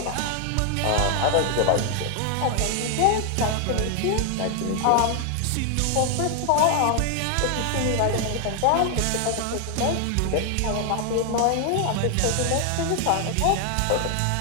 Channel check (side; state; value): both; different; correlation 0.00